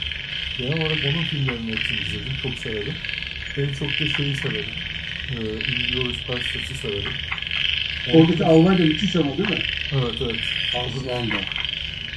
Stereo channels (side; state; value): both; identical; correlation 1.00